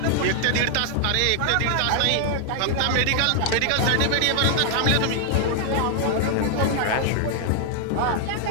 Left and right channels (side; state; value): both; different; correlation 0.00